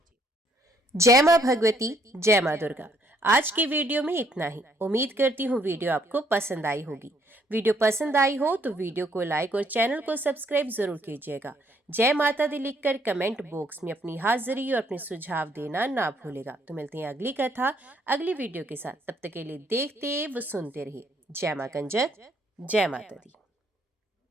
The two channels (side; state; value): both; normal; correlation 0.68